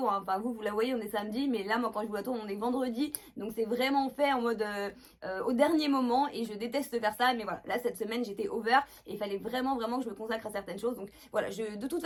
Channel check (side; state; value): both; identical; correlation 1.00